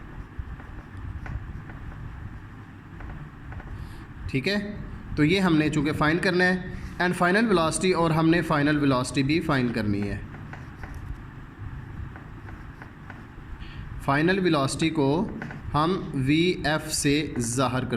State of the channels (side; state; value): both; identical; correlation 1.00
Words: ठीक है। तो ये हमने चूँकि फाइंड करना है एंड फाइनल वेलोसिटी, और हमने फाइनल वेलोसिटी भी फाइंड करनी है। फाइनल वेलोसिटी को हम VF से ज़ाहिर